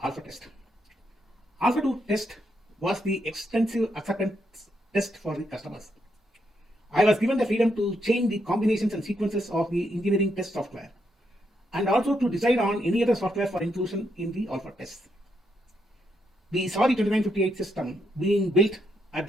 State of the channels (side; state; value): both; normal; correlation 0.79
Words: Alpha test. Alpha 2 test was the extensive acceptance test for the customers. I was given the freedom to change the combinations and sequences of the engineering test software and also to decide on any other software for inclusion in the Alpha test. We saw the 2958 system being built at